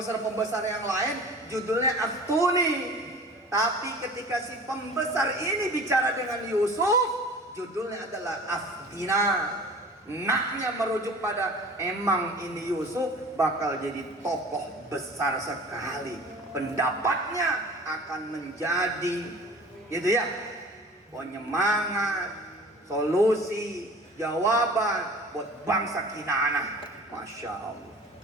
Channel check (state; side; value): normal; both; correlation 0.42